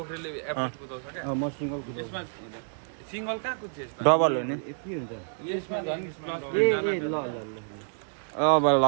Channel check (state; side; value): silent; left; 59 dB below the other